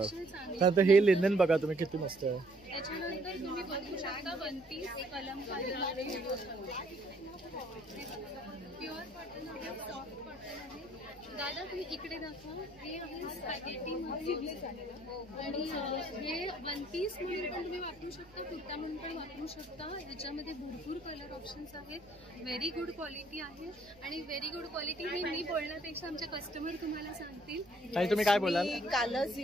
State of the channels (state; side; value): noise; right; hum, 27 dB below the sound